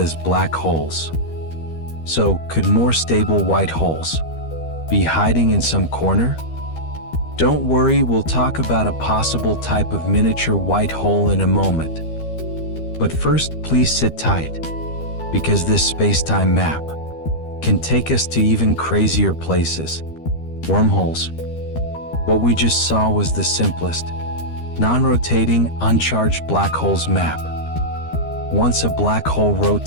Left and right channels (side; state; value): right; late; 13 ms